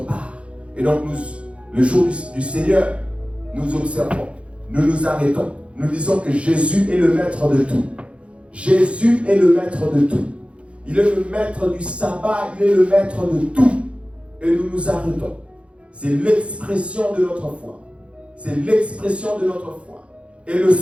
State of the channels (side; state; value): left; late; 0.061 ms